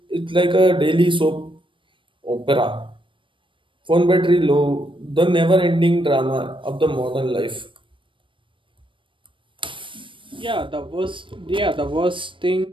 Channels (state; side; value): late; left; 0.25 ms